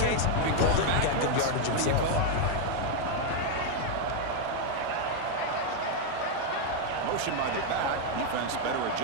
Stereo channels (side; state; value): both; different; correlation 0.00